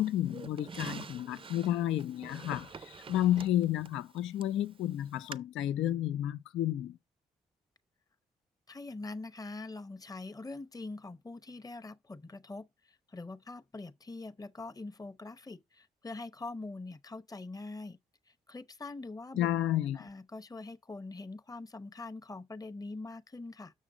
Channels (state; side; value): quieter; right; 9.8 dB